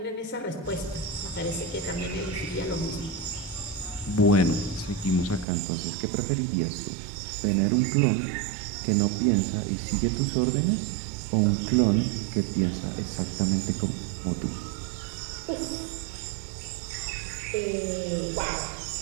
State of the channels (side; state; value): left; drops out; at 5.5 s